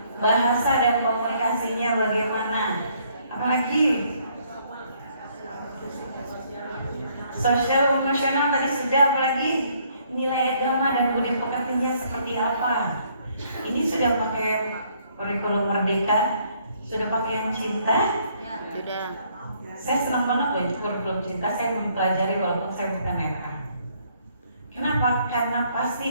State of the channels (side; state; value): both; inverted; correlation -0.67